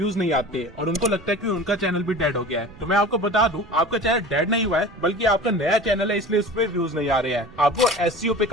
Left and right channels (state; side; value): noise; right; rumble, 21 dB below the sound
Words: नहीं आते और उनको लगता है कि उनका चैनल भी डेड हो गया है। तो मैं आपको बता दूं, आपका चैनल डेड नहीं हुआ है, बल्कि आपका नया चैनल है, इसलिए उस पर व्यूज नहीं आ रहे हैं। आपको एसईओ पे